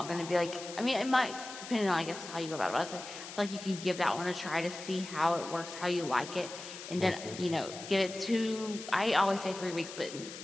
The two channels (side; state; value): left; noise; hiss, 11 dB below the sound